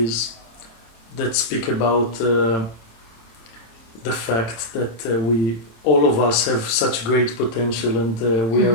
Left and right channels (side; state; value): right; late; 26 ms